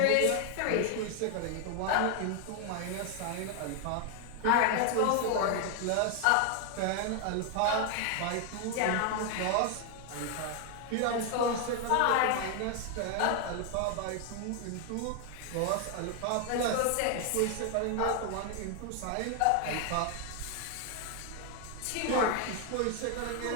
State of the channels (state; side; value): different; both; correlation 0.00